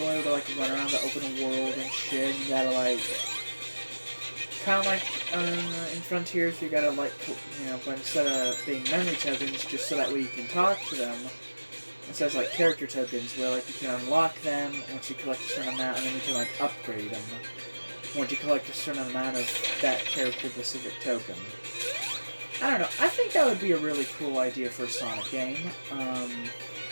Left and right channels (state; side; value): inverted; both; correlation -1.00